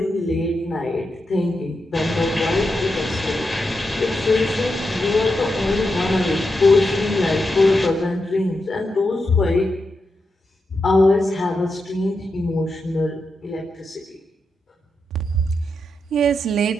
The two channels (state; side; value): normal; both; correlation 0.86